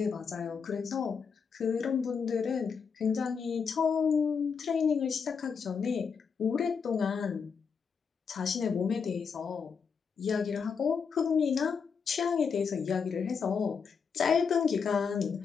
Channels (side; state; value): right; quieter; 6.0 dB